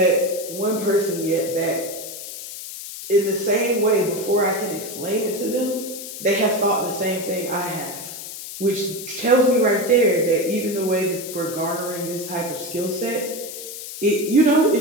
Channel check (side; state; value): left; noise; hiss, 10 dB below the sound